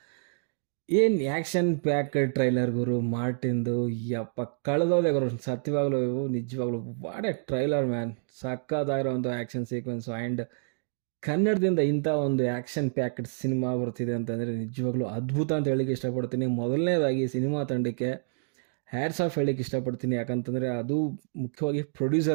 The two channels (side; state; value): left; silent; digital silence